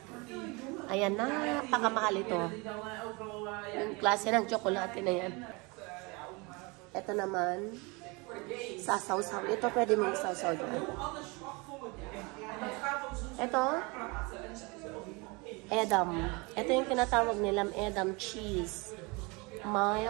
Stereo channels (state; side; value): quieter; left; 27.6 dB